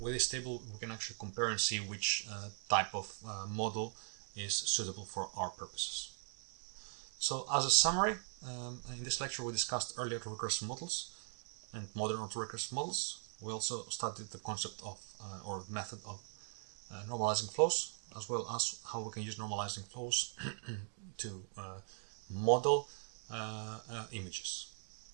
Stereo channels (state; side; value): silent; left; 51 dB below the other